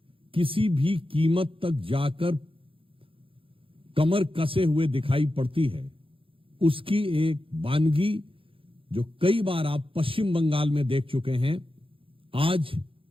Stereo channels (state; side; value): late; left; 0.26 ms